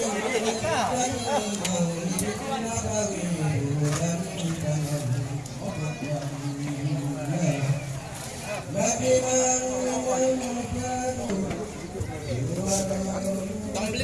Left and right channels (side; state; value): both; identical; correlation 1.00